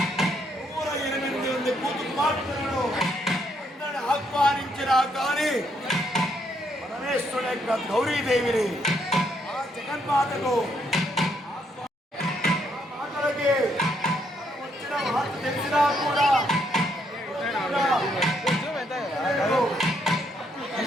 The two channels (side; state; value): both; normal; correlation 0.73